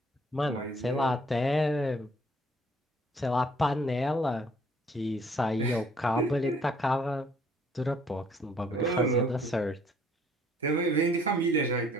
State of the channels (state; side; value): normal; both; correlation 0.61